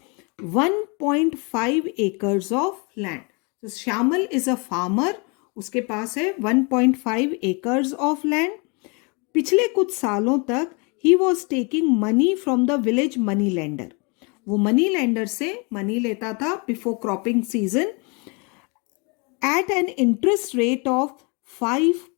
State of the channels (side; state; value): right; quieter; 32.0 dB